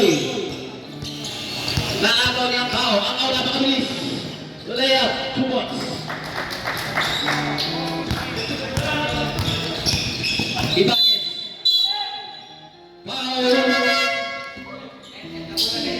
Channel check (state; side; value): identical; both; correlation 1.00